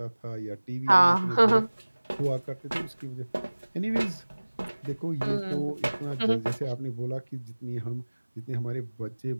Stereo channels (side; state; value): both; inverted; correlation -1.00